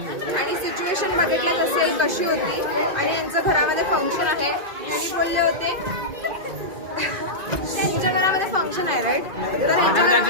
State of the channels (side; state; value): left; late; 2.5 ms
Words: सिच्युएशन बघितलं नसेल कशी होती आणि यांचं घरामध्ये फंक्शन आहे. यांनी बोलले होते त्यांच्या घरामध्ये फंक्शन आहे राईट. तर